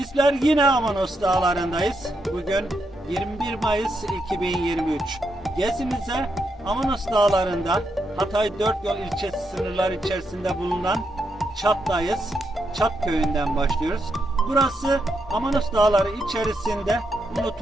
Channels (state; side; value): normal; both; correlation 0.81